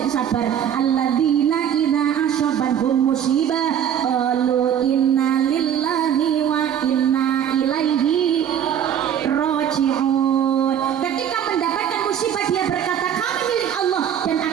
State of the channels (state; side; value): quieter; left; 9.2 dB